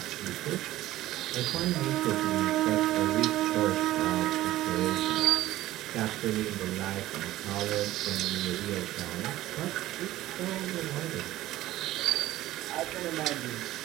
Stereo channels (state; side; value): quieter; left; 15.4 dB